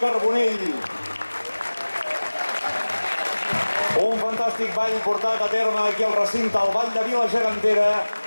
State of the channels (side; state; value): both; inverted; correlation -1.00